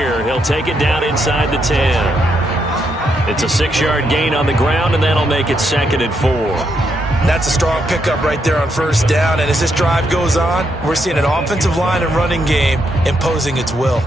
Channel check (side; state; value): both; normal; correlation 0.78